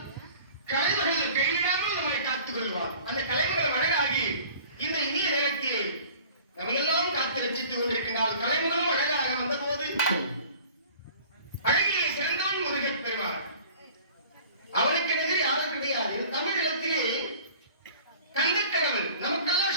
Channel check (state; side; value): inverted; both; correlation -0.46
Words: கலைமகள் கையிடாமல் நம்மை காத்துக் கொள்வார். அந்த கலைமகளை வழங்காகி இந்த இனிய நேரத்தில் நம்ம எல்லாம் காத்து ரசித்துக் கொண்டிருக்கின்றால் கலைமகளும் அழகாக வந்த போது அழகிலே சிறந்த